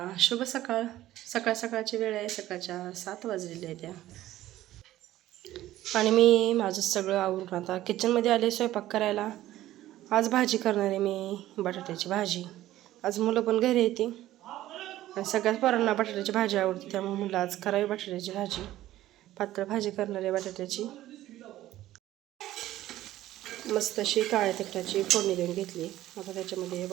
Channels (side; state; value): left; quieter; 14.5 dB